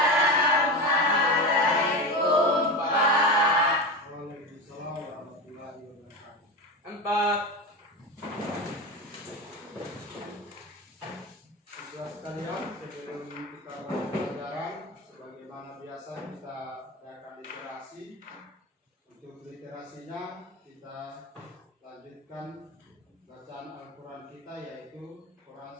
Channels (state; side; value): normal; both; correlation 0.22